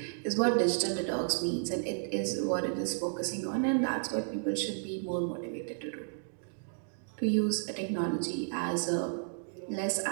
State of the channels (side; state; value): left; silent; digital silence